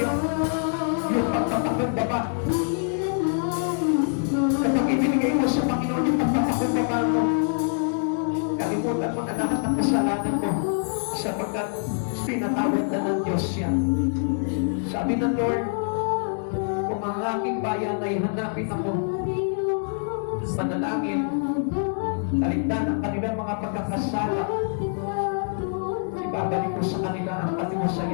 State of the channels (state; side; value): silent; right; digital silence